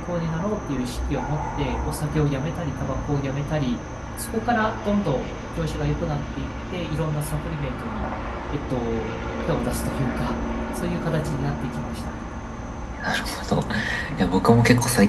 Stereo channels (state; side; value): identical; both; correlation 1.00